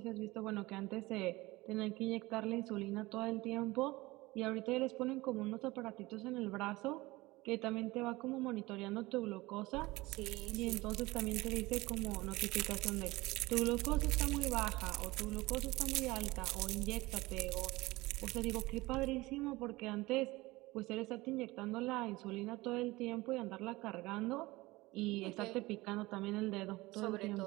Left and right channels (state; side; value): quieter; left; 20.7 dB